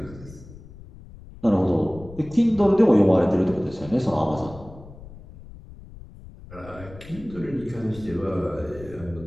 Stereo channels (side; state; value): left; noise; rumble, 18 dB below the sound